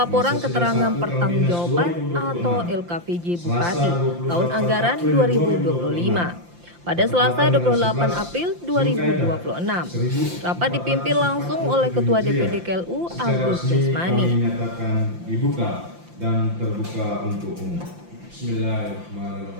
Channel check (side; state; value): left; late; 5.8 ms